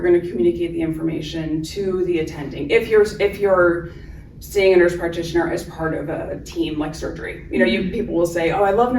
going to communicate the information to the attending. If you're seeing a nurse practitioner as part of a team like surgery, people will say, "Oh, I love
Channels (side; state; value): both; identical; correlation 1.00